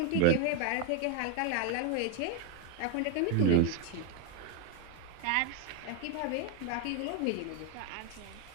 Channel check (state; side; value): different; both; correlation 0.01